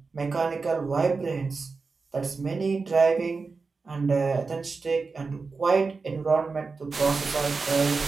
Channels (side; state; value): left; quieter; 4.4 dB